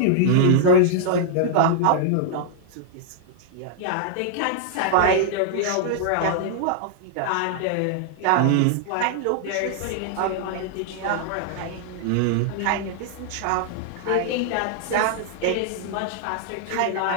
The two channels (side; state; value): both; different; correlation -0.01